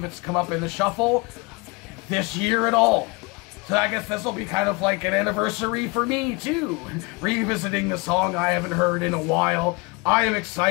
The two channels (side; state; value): right; quieter; 26.9 dB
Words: it's come up in the shuffle this year at all. So I guess this will be kind of like an anniversary for me too, revisiting the song I haven't heard in a while. I am